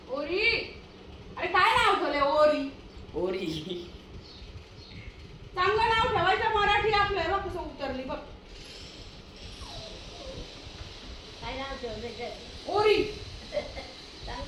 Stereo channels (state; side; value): identical; both; correlation 1.00